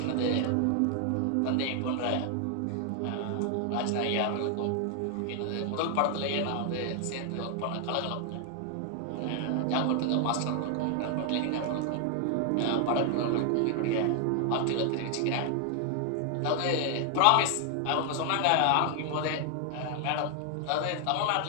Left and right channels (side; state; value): both; different; correlation 0.00